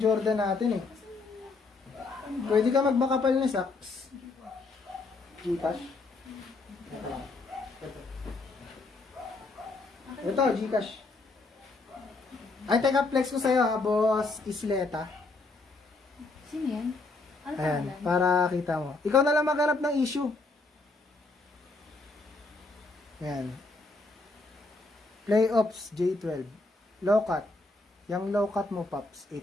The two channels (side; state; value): right; quieter; 3.5 dB